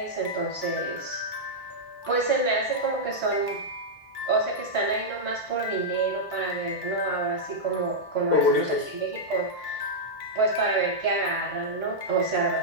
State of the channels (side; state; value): both; normal; correlation -0.07